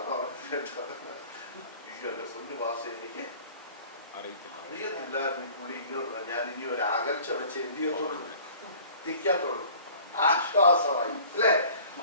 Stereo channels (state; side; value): inverted; both; correlation -0.48